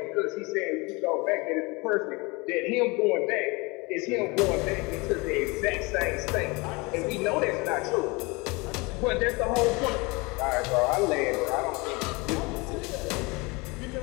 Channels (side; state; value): right; quieter; 26.1 dB